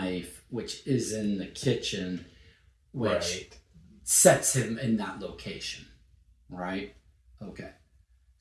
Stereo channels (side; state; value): both; identical; correlation 1.00